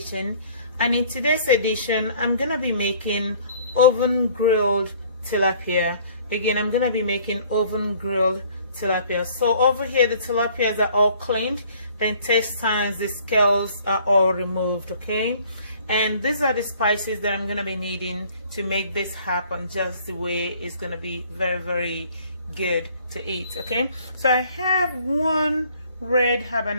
and in today's edition I'm gonna be making oven grilled tilapia. Again, I'm gonna be making oven grilled tilapia. So over here the tilapias are all cleaned, the intestines, the scales are all removed, okay? And these are the spices that I'm going to be needing to make this happen just the way it's going to be very good to eat, okay? So I have one red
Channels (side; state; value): both; inverted; correlation -0.56